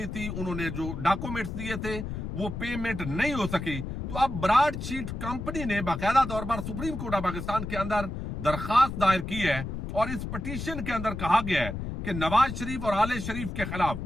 تھی، انہوں نے جو ڈاکومنٹس دیے تھے وہ پیمنٹ نہیں ہو سکی. تو اب براڈ شیٹ کمپنی نے باقاعدہ طور پر سپریم کورٹ آف پاکستان کے اندر درخواست دائر کی ہے، اور اس پٹیشن کے اندر کہا گیا ہے کہ نواز شریف اور آل شریف کے خلاف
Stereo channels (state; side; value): noise; left; rumble, 6 dB below the sound